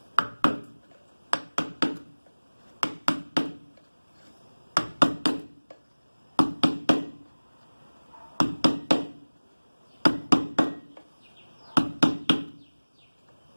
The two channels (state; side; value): inverted; both; correlation -1.00